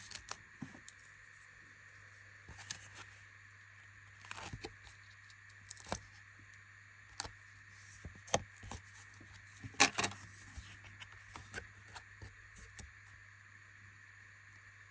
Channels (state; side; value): identical; both; correlation 1.00